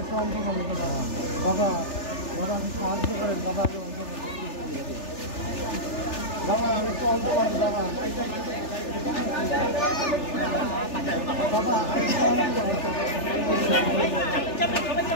তো অন্ত বাবা বাবা আমি সাহায্য করেন বাবা আমি অন্ত বাবা আমি তো অন্ত বাবা বাবা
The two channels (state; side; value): late; right; 3.4 ms